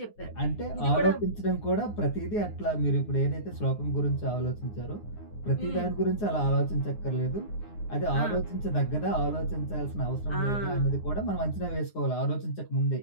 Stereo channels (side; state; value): right; late; 9.6 ms